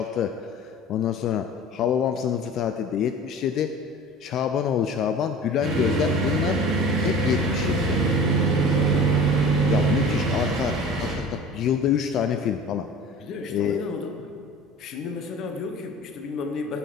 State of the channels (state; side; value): normal; both; correlation 0.40